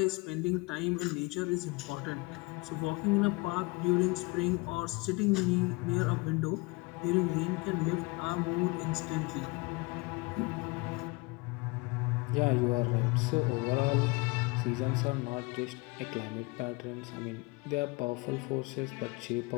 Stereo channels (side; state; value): right; quieter; 26.1 dB